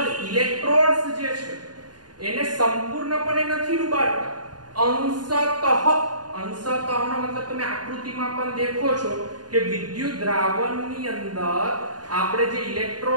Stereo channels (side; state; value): left; late; 0.70 ms